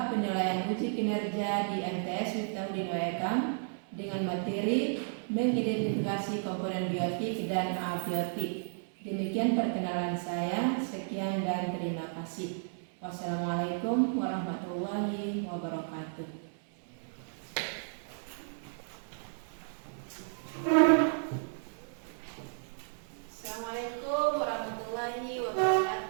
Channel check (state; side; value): silent; left; digital silence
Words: penilaian uji kinerja di MTS Miftahudin Waekam dengan materi mengidentifikasi komponen biotik dan abiotik. Demikian perkenalan saya. Sekian dan terima kasih. Wassalamualaikum warahmatullahi wabarakatuh. Assalamualaikum warahmatullahi wabarakatuh.